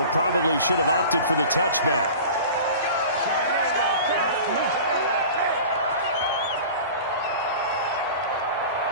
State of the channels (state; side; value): inverted; both; correlation -0.38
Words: probably should have opted for the touchback.